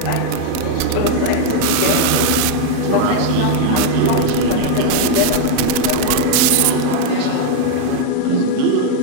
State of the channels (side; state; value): both; different; correlation 0.01